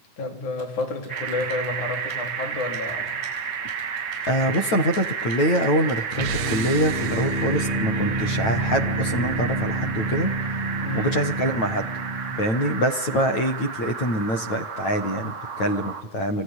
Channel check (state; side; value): late; right; 9.1 ms